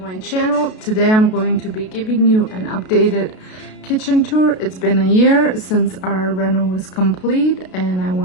channel. Today I'm going to be giving you an updated kitchen tour. It's been a year since our reno was complete, and I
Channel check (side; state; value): right; late; 32 ms